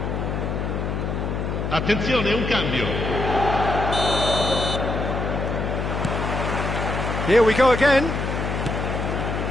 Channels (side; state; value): left; noise; hum, 2 dB below the sound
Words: Attenzione, un cambio. Here we go again.